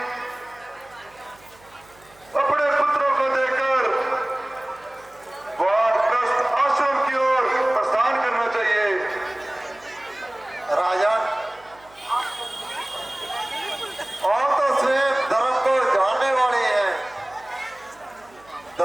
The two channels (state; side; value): noise; right; hum, 28 dB below the sound